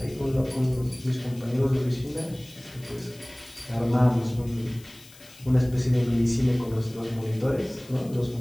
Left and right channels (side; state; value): left; noise; hiss, 22 dB below the sound